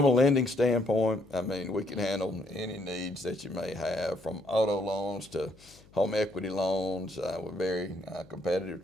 a lending standpoint, I mean, we can handle any needs that you may have, from auto loans to home equity loans with very competitive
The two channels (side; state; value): left; noise; hum, 26 dB below the sound